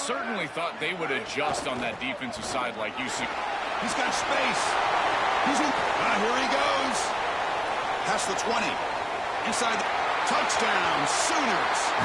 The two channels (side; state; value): both; identical; correlation 1.00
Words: thought they would adjust on that defensive side like you see. He's got space. He's in. Here he goes. Past the 20. Inside. Touchdown, Sooners.